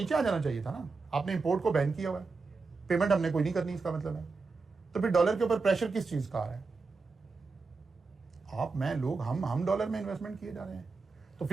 आ जाना चाहिए था ना, आपने इंपोर्ट को बैन किया हुआ है, पेमेंट हमने कोई नहीं करनी, इसका मतलब है। तो फिर डॉलर के ऊपर प्रेशर किस चीज का आ रहा है? आप, मैं, लोग, हम डॉलर में इन्वेस्टमेंट किए जा रहे हैं। तो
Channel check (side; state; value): left; quieter; 4.2 dB